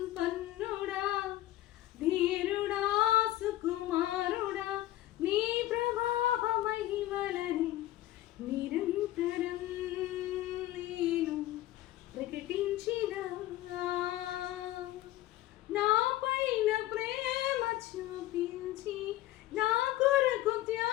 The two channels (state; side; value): quieter; right; 15.4 dB